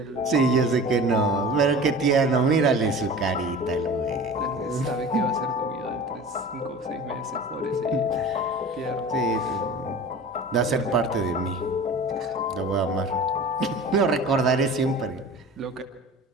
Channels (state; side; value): normal; both; correlation 0.38